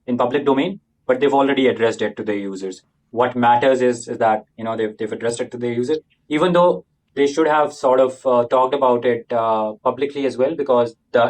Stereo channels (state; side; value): identical; both; correlation 1.00